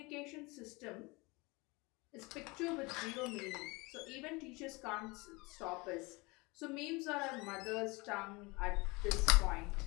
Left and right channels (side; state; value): right; quieter; 25.6 dB